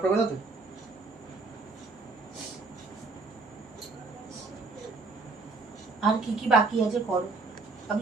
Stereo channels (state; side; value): quieter; left; 3.9 dB